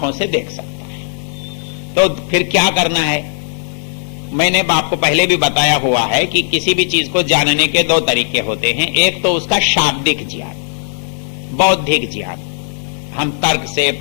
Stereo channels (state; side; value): silent; right; digital silence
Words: से देख सकता है। तो फिर क्या करना है? मैंने आपको पहले भी बताया हुआ है कि किसी भी चीज को जानने के दो तरीके होते हैं। एक तो उसका शाब्दिक ज्ञान, बौद्धिक ज्ञान, हम तर्क से,